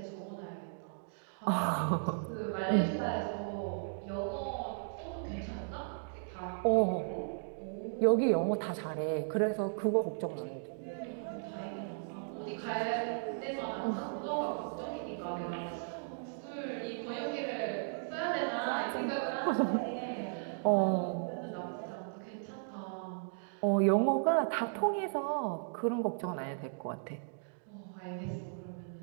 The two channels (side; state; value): left; silent; digital silence